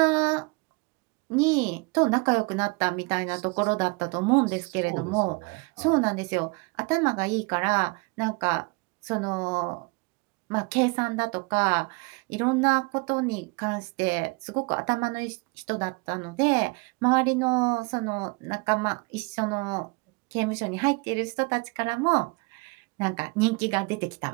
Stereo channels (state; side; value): quieter; left; 28.3 dB